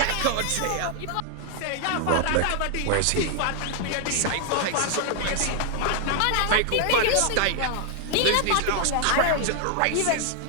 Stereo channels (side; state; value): both; different; correlation 0.00